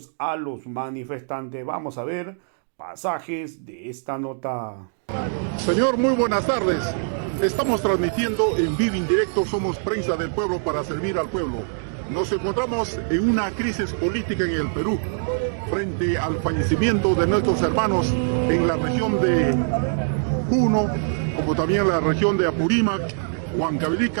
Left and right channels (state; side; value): silent; left; digital silence